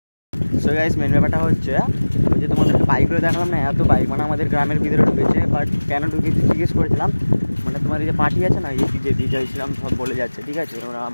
সো গাইস মেন ব্যাপারটা হচ্ছে ওই যে তোমাদেরকে বাইকগুলো দেখালাম না এত বাইক মানে আমাদের গ্রামের ভিতরে ঢুকেছে বাট কেন ঢুকেছে জিজ্ঞেস করেছিলাম মানে তোমার এই যে পার্টি আছে না এই যে বিজয় ছিলাম সব বলে যাচ্ছে ঠিক আছে ওরা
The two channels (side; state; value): both; inverted; correlation -1.00